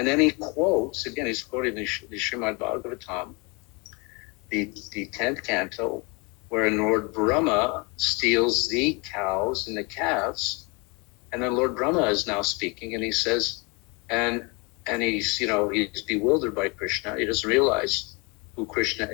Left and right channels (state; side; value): quieter; right; 29.9 dB